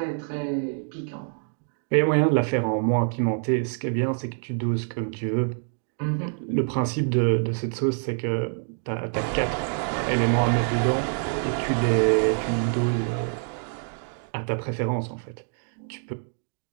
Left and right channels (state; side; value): silent; left; 61 dB below the other